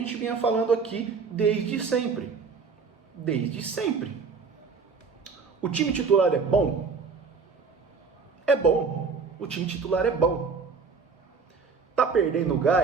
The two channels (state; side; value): quieter; left; 5.0 dB